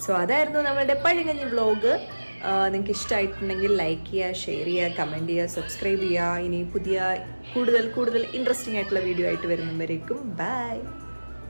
സോ അതായിരുന്നു നമ്മളുടെ പഴങ്കഞ്ഞി വ്ലോഗ്. നിങ്ങൾക്ക് ഇഷ്ടമായിട്ടുണ്ടെങ്കിൽ ലൈക്ക് ചെയ്യുക, ഷെയർ ചെയ്യുക, കമൻറ്റ് ചെയ്യുക, സബ്സ്ക്രൈബ് ചെയ്യുക. ഇനി പുതിയ കൂടുതൽ ഇൻട്രസ്റ്റിംഗ് ആയിട്ടുള്ള വീഡിയോ ആയിട്ട് വരുന്നവരേക്കും ബൈ.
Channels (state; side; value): inverted; both; correlation -1.00